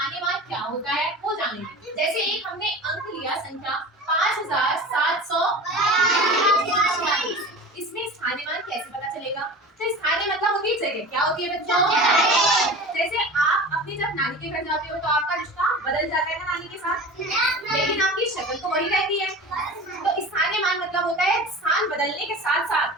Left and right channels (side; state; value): both; normal; correlation 0.35